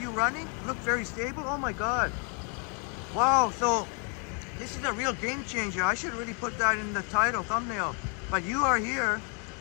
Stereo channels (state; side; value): quieter; right; 37.8 dB